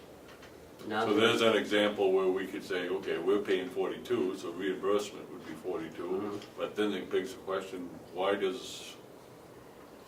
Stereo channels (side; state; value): both; identical; correlation 1.00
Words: Now So there's an example where we could say, okay, we're paying 42, so reimbursement would be 42. Mhm. But then it begs the question, why does